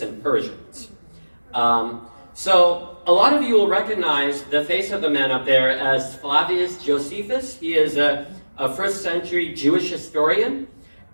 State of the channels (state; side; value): inverted; both; correlation -1.00